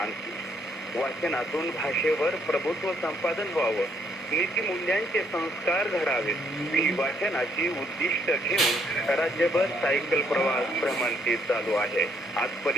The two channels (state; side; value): normal; both; correlation 0.70